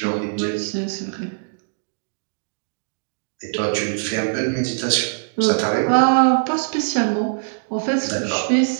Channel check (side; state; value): left; silent; digital silence